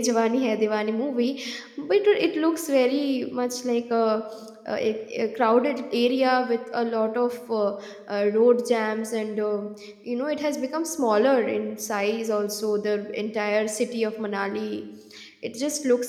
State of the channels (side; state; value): both; identical; correlation 1.00